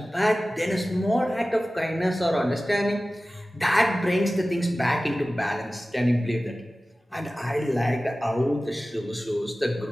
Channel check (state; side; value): normal; both; correlation 0.96